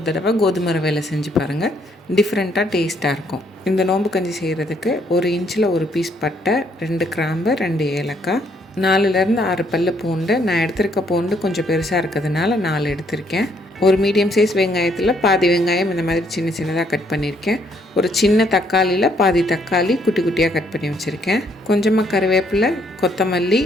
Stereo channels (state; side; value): normal; both; correlation 0.69